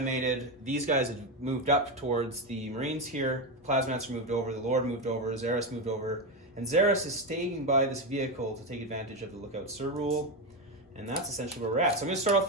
These guys had moved up towards the Marines here. Plasmancer moved over, the Lord moved over, Xeris moved over. And Xeris is staying by this vehicle to take advantage of the Lookout Sir rule. And that's essentially where we're at. So I'm going to start off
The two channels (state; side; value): normal; both; correlation 0.12